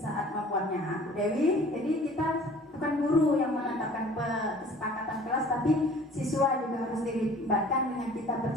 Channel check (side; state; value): both; normal; correlation 0.49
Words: membuatnya Bu Dewi. Jadi kita bukan guru yang menetapkan kesepakatan kelas, tapi siswa juga harus dilibatkan dengan kita